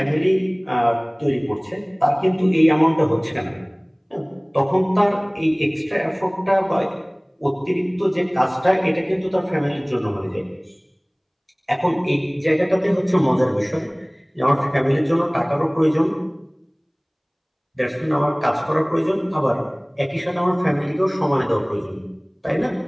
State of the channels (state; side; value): identical; both; correlation 1.00